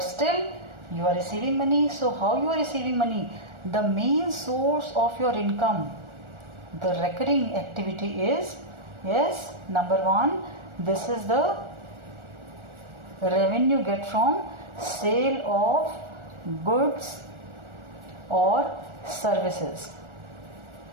still, you are receiving money. So how you are receiving money? The main source of your income, the recurring activity is, yes, number one, this is the revenue get from sale of goods or services.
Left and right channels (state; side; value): late; left; 1.4 ms